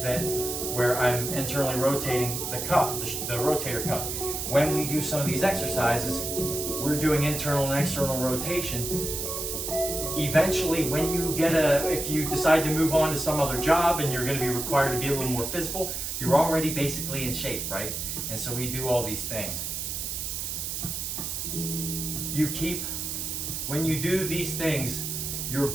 where I'm internally rotating the cuff, the rotator cuff. When we do some of these exercises, we're doing internal and external rotation. Eventually, when you if you decide to move on to some other job and you're going to be required to be a little more physical, you're already basically in shape, right? And so we do all these things. When you do these things, your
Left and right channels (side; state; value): right; noise; hiss, 4 dB below the sound